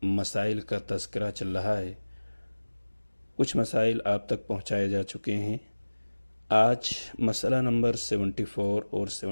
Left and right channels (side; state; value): both; inverted; correlation -1.00